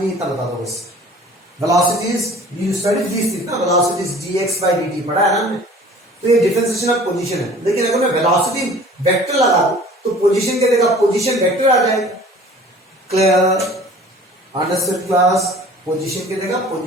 इतना बता दो बस। Velocity is, you study this thing ना, velocity is dx by dt पढ़ा है ना हमने। तो ये डिफरेंशिएशन ऑफ पोजीशन है, लेकिन अगर मैं वेलोसिटी वेक्टर लगा दूं तो पोजीशन क्या देगा, पोजीशन वेक्टर आ जाएगा। क्लियर? Understood class? पोजीशन की जगह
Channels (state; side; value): normal; both; correlation 0.47